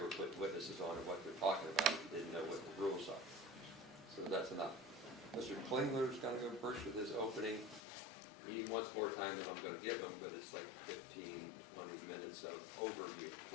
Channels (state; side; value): drops out; right; at 7.8 s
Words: putting witnesses on and what they're talking about if you didn't know what the rules are. So that's enough. Mr. Klingler's going to go first with his opening. He wants more time than I'm going to give him, but it's like 15, 20 minutes of overview,